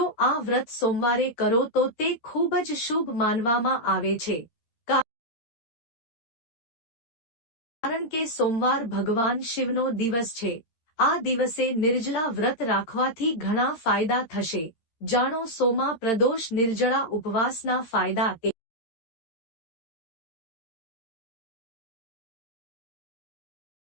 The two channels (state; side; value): late; right; 13 ms